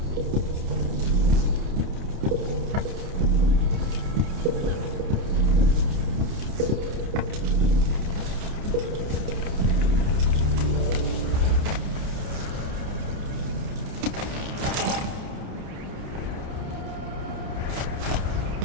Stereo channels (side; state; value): left; late; 29 ms